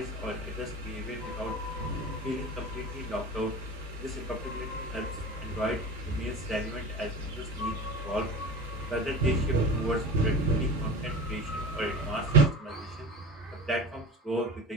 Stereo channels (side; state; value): both; normal; correlation 0.32